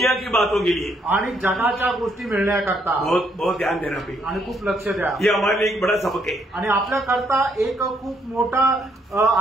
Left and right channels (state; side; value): normal; both; correlation 0.72